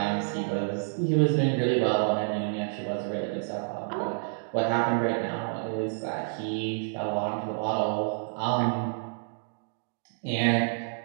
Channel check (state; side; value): silent; left; digital silence